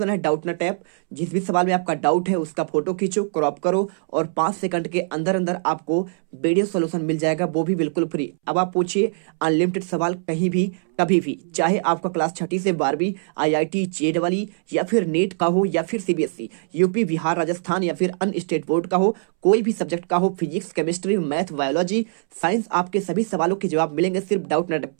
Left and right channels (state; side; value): silent; left; 64 dB below the other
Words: है डाउट नट ऐप। जिस भी सवाल में आपका डाउट है उसका फोटो खींचो, क्रॉप करो और 5 सेकंड के अंदर अंदर आपको वीडियो सोल्यूशन मिल जाएगा, वो भी बिल्कुल फ्री। अब आप पूछिए अनलिमिटेड सवाल कहीं भी कभी भी, चाहे आपका क्लास 6ठी से 12वीं IIT JEE या फिर नीट का हो या फिर CBSE, यूपी, बिहार, राजस्थान या फिर अन्य स्टेट बोर्ड का हो, कोई भी सब्जेक्ट का हो, physics, chemistry, math, biology, science, आपके सभी सवालों के जवाब मिलेंगे सिर्फ डाउट नेट